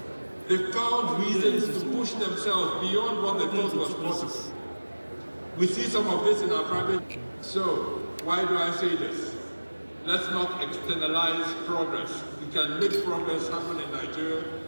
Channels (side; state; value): both; inverted; correlation -1.00